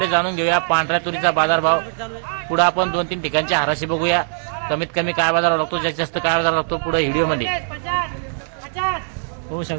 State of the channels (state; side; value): silent; left; digital silence